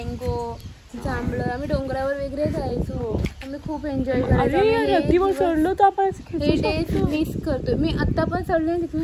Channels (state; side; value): identical; both; correlation 1.00